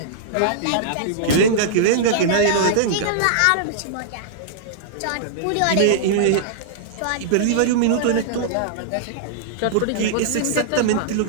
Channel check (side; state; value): both; different; correlation -0.02